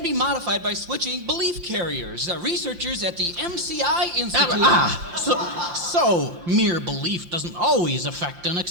be modified by switching belief carriers. Researchers at the MCI Institute... So mere belief doesn't always affect an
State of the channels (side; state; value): left; late; 5.6 ms